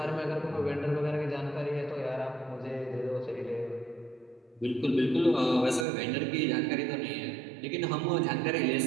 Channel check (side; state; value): left; drops out; at 5.9 s